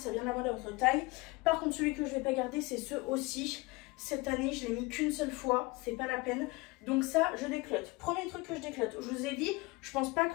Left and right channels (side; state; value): right; quieter; 24.1 dB